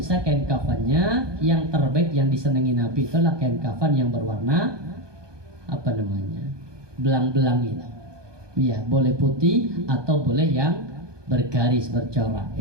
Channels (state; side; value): late; left; 1.2 ms